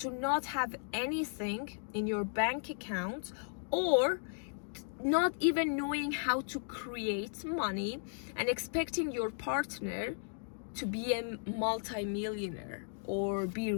not have anything in your bank account, or not even knowing how to create money, and expecting your partner to be a multi-millionaire or be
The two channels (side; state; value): right; silent; digital silence